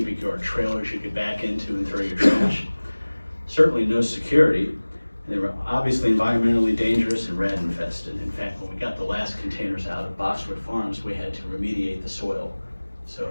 yard trailers you could back into and throw your trash. Certainly no security. They were obviously environmentally dangerous and rat infested. In fact, when we got the last containers out of Boxwood Farms, we had to remediate the soil. So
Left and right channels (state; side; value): inverted; both; correlation -1.00